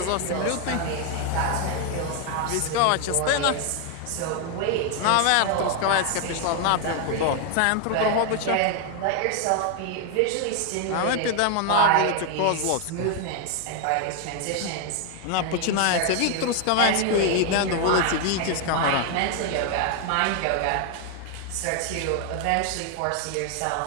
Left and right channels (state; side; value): different; both; correlation 0.01